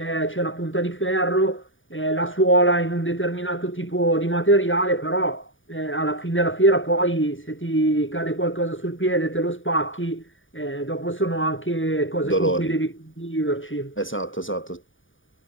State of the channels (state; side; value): late; right; 0.57 ms